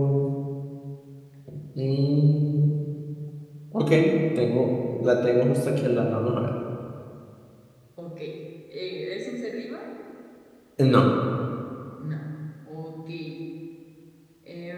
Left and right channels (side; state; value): both; identical; correlation 1.00